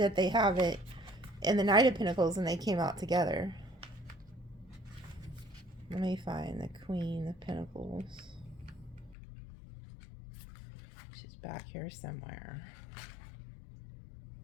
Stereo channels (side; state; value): right; drops out; at 9.2 s